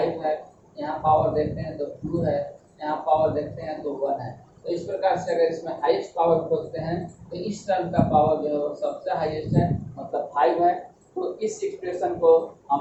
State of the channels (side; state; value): both; identical; correlation 1.00